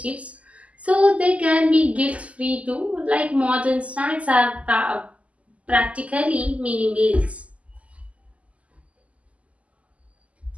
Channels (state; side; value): late; left; 0.066 ms